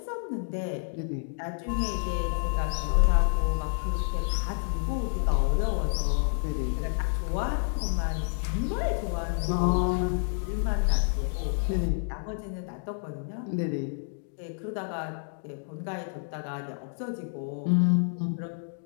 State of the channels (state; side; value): silent; right; digital silence